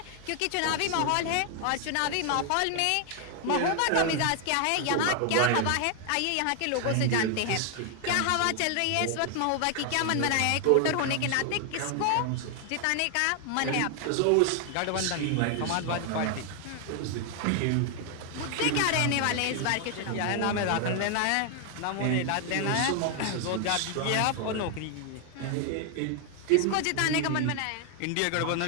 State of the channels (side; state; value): both; different; correlation 0.00